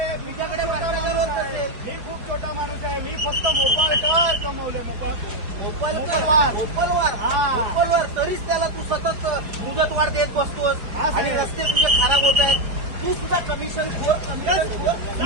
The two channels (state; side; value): late; left; 4.5 ms